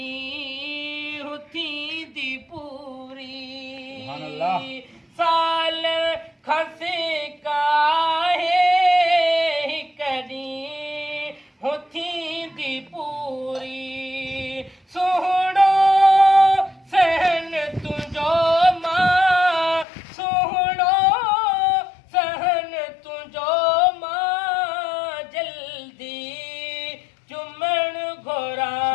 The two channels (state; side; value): drops out; right; at 19.9 s